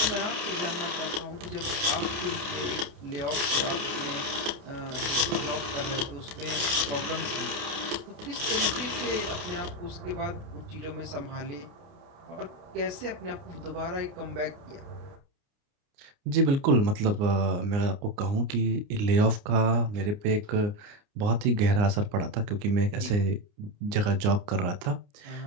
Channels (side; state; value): left; late; 29 ms